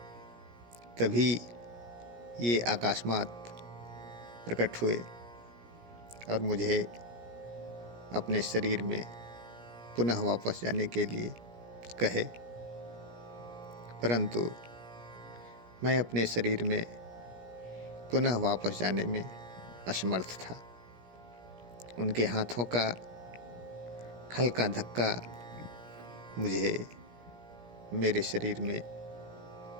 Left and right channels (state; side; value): late; left; 17 ms